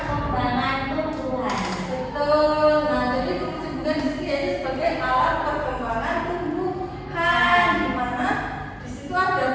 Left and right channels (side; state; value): both; identical; correlation 1.00